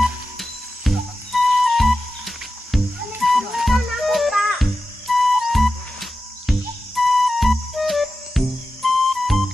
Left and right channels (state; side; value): normal; both; correlation 0.92